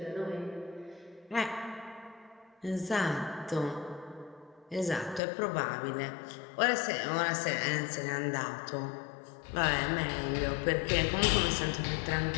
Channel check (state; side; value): drops out; right; at 5.2 s